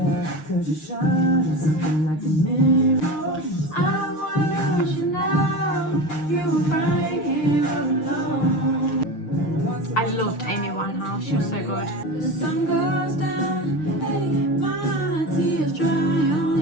I loved Amy Winehouse, she was so good. The sun goes down, my tears dry on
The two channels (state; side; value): late; right; 6.6 ms